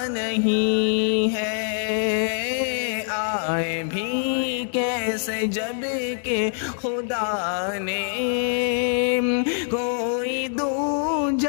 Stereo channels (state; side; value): silent; right; 63 dB below the other